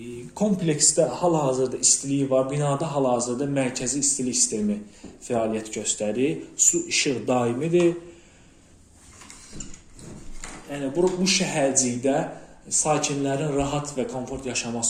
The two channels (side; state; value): both; identical; correlation 1.00